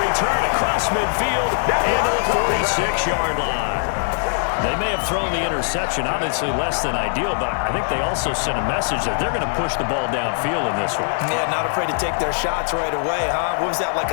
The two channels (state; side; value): silent; right; digital silence